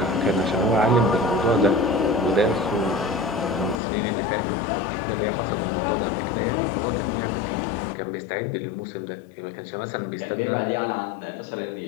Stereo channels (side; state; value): right; drops out; at 3.8 s